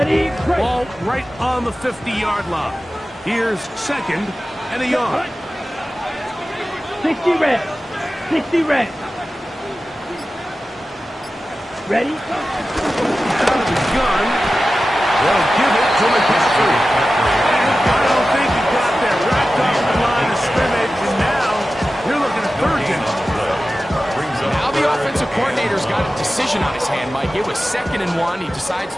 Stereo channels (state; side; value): normal; both; correlation 0.94